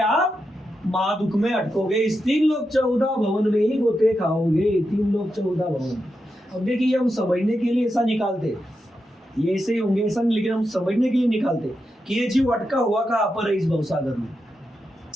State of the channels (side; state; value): both; normal; correlation 0.87